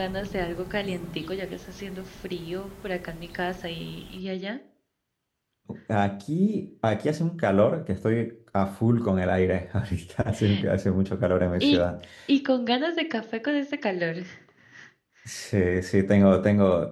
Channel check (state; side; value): identical; both; correlation 1.00